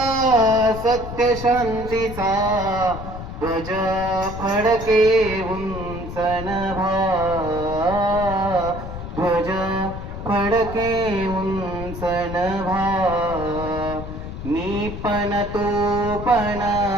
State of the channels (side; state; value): left; noise; rumble, 9 dB below the sound